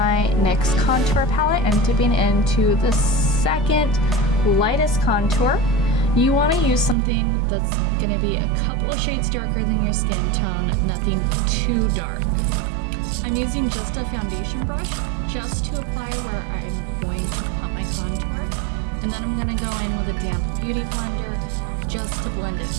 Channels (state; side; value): drops out; left; at 7.0 s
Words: NYX contour palette and dipping into the second lightest contour. You want to use something that's going to be a couple of shades darker than your skin tone, nothing too dark. I'm using just a foundation brush just to apply where I'm going to pump my contour. And then I'm going to go in with a damp beauty blender just to blend